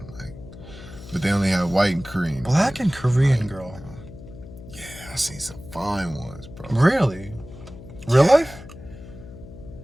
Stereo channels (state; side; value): noise; left; hum, 16 dB below the sound